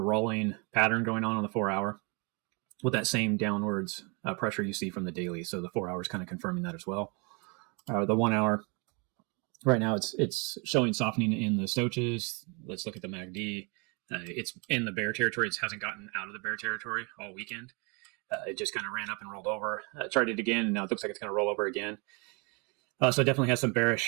pattern going on the 4 hour with that same downwards pressure you see from the daily. So the 4 hours kind of confirming that as well. The 1 hour, right now it's showing softening in the stochastics. Let's look at the MACD. It's in the bear territory. It hasn't gotten out of the bear territory all weekend. It just kind of ran up and rolled over. Tried it again, and now it looks like it's going to roll over again. So it definitely has some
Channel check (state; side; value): quieter; left; 31.9 dB